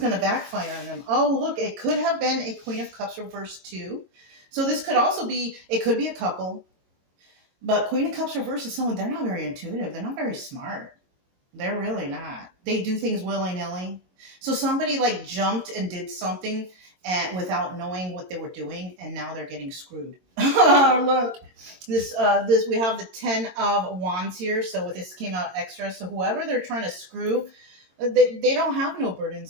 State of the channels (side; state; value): left; late; 22 ms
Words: to backfire on them. Oh, look, it could have been a Queen of Cups reverse too. So this could also be, it could be a couple. But Queen of Cups reverse is someone, they're not very intuitive. They're not very smart. They're really not. They do things willy-nilly. So somebody like jumped and did something without knowing what they were doing, and now they're getting screwed. Look, this we have the 10 of Wands here. So this came out extra. So whoever they're trying to screw, they don't have no